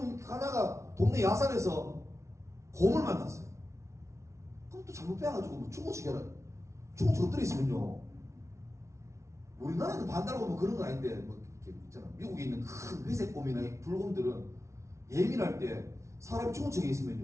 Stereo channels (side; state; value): left; late; 0.14 ms